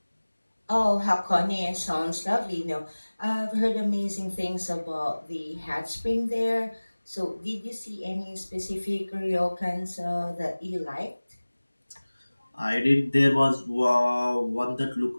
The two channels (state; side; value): inverted; both; correlation -1.00